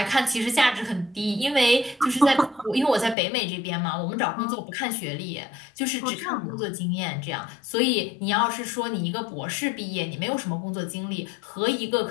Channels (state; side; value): drops out; right; at 3.2 s